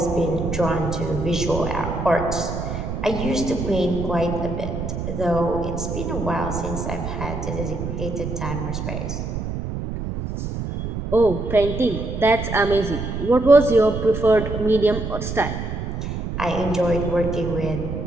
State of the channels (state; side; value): noise; right; rumble, 5 dB below the sound